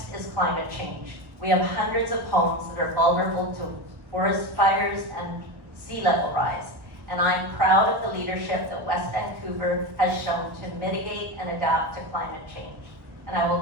is climate change. We have hundreds of homes that are vulnerable to forest fires and sea level rise. And I'm proud of the leadership that West Vancouver has shown to mitigate and adapt to climate change. And I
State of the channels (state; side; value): late; left; 1.4 ms